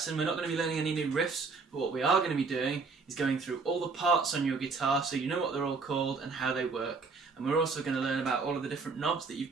we're not going to be learning any new riffs, but what we are going to be doing is going through all the parts on your guitar so you know what they're all called and how they work. And we're also going to learn about all of the different knobs that you've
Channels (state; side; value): quieter; left; 4.5 dB